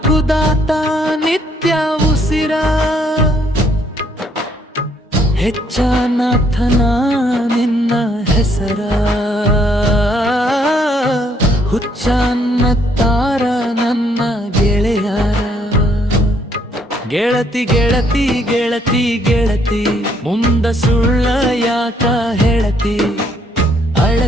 ನಿತ್ಯ ಉಸಿರ ಹೆಚ್ಚನಾಥನ ನಿನ್ನ ಹೆಸರ ಹುಚ್ಚನ್ನತ್ತಾರ ನನ್ನ ಗೆಳೆಯರ ಗೆಳತಿ ಗೆಳತಿ ಗೆಳತಿ ಗೆಳತಿ ಮುಂದ ಸುಳ್ಳ ಯಾಕ ಹೇಳತಿ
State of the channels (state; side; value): normal; both; correlation 0.68